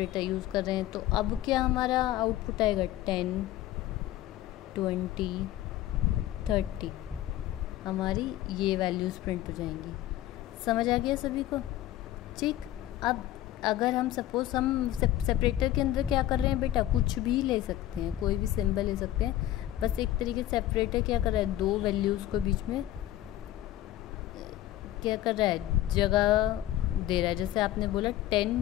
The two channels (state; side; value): quieter; right; 14.0 dB